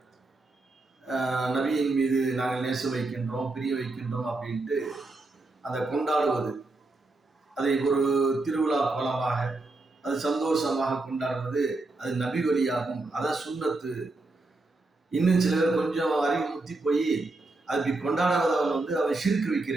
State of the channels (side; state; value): left; quieter; 3.2 dB